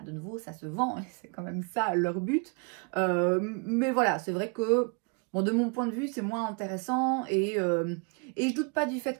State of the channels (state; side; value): quieter; left; 34.2 dB